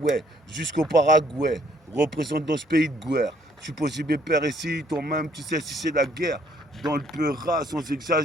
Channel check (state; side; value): normal; both; correlation 0.64